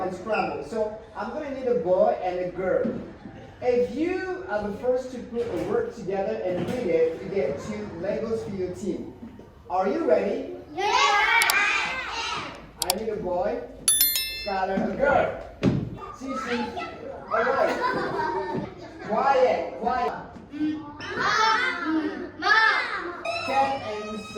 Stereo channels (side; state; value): both; identical; correlation 1.00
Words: So I'm going to need a boy and a girl. If you are the first to put a word together and read it, you get 2 Legos for your team. Are you ready? Yeah! I need a boy, Skylar, a girl. Cece, alright. Quiet. Cat and